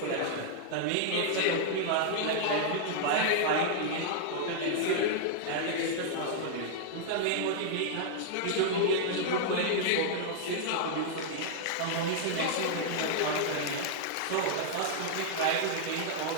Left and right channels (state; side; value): different; both; correlation -0.01